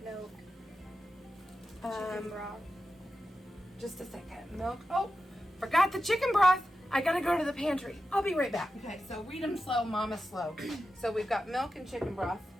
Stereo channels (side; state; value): both; normal; correlation 0.91